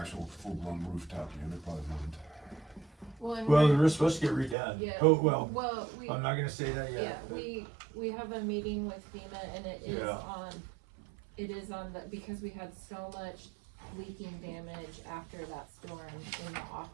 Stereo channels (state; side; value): drops out; left; at 4.5 s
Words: full-blown rooftop unit, probably wouldn't. Well, we're supposed to get redone. Yeah. Oh, well, Well, I'm not gonna say that Yeah, yet. but- we have a meeting with FEMA, and it is Yeah. on the, because we had so much leaking damage after that storm in the